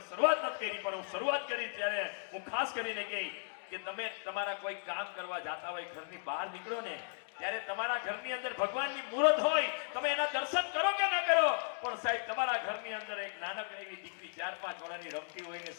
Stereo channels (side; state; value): right; silent; digital silence